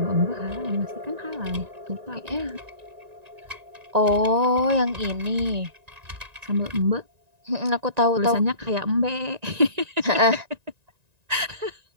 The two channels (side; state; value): left; late; 1.9 ms